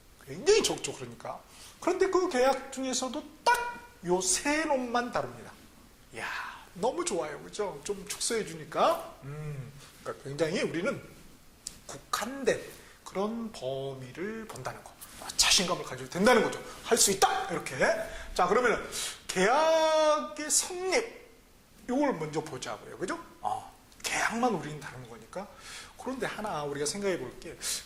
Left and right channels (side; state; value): both; identical; correlation 1.00